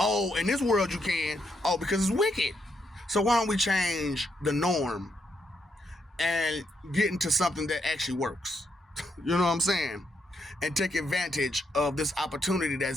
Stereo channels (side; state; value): both; normal; correlation 0.78